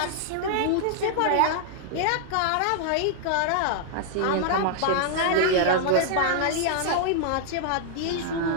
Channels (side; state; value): both; different; correlation -0.01